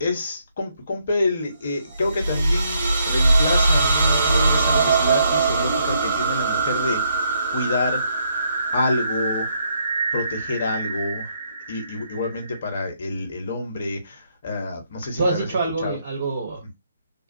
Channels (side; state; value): both; inverted; correlation -0.74